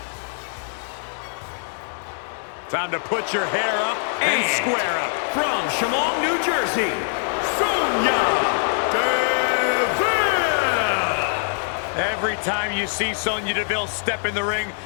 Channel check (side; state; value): right; silent; digital silence